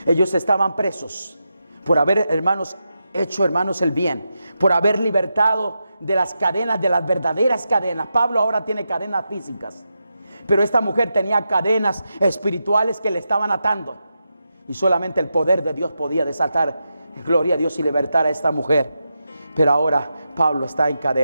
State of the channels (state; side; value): inverted; both; correlation -0.88